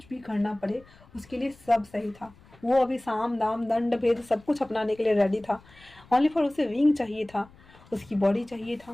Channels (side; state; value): left; noise; rumble, 26 dB below the sound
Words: भी करना पड़े उसके लिए सब सही था। वो अभी साम दाम दंड भेद सब कुछ अपनाने के लिए रेडी था। ओनली फॉर उसे विंग चाहिए था, उसकी बॉडी चाहिए